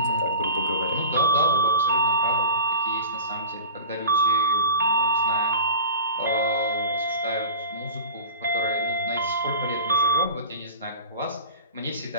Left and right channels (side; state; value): both; inverted; correlation -0.37